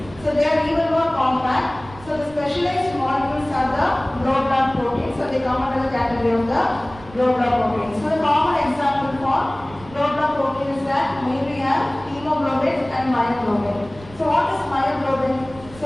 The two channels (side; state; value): right; noise; rumble, 20 dB below the sound